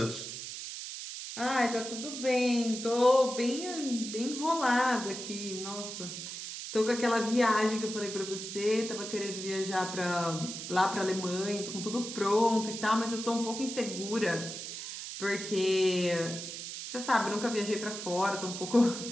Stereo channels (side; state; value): right; noise; hiss, 8 dB below the sound